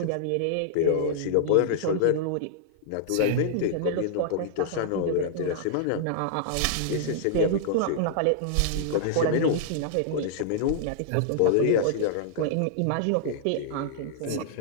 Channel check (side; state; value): both; different; correlation -0.01